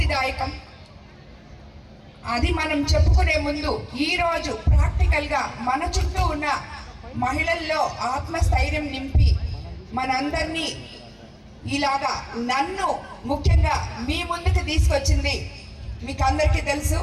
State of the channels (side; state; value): both; identical; correlation 1.00